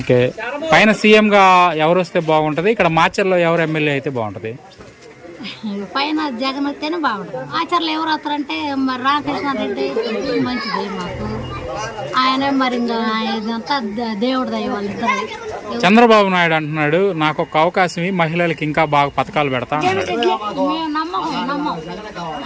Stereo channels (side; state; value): both; identical; correlation 1.00